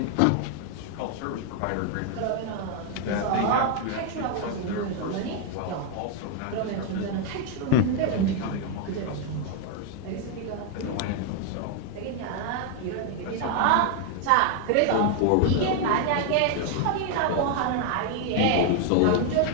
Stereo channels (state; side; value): different; both; correlation 0.00